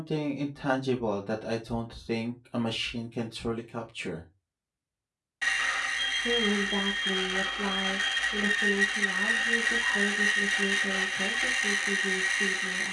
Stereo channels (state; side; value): identical; both; correlation 1.00